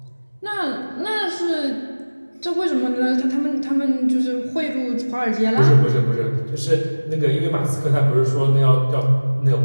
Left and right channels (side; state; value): both; inverted; correlation -1.00